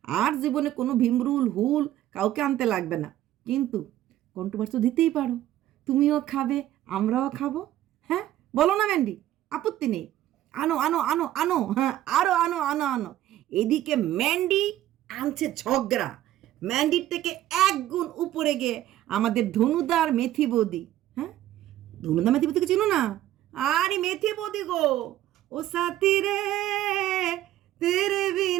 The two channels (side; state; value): left; quieter; 13.4 dB